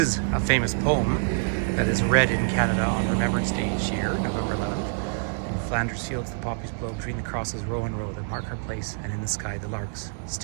a famous poem that is read in Canada on Remembrance Day each year, November 11th. In Flanders fields the poppies blow, between the crosses row and row that mark our place, and in the sky the larks,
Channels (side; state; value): left; silent; 61 dB below the other